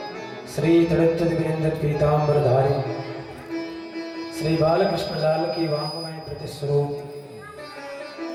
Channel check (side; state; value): both; identical; correlation 1.00